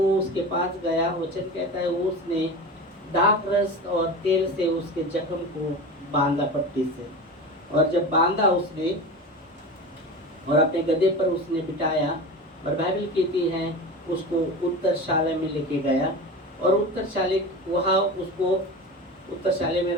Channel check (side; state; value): both; normal; correlation 0.29